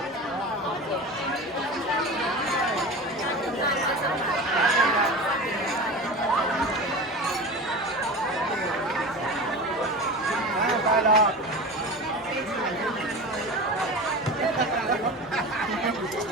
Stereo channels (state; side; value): normal; both; correlation 0.30